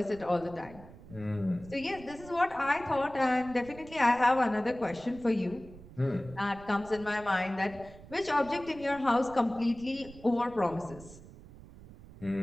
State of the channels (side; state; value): right; noise; rumble, 18 dB below the sound